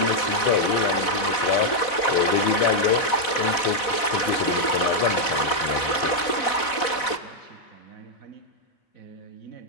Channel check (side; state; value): right; late; 4.1 ms